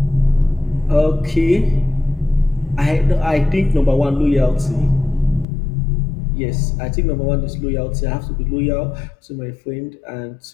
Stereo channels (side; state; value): right; drops out; at 5.5 s